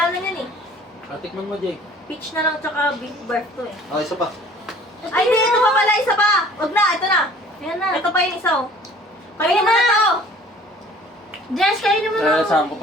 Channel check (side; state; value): both; normal; correlation 0.51